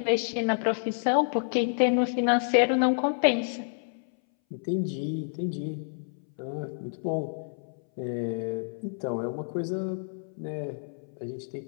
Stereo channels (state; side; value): silent; right; 59 dB below the other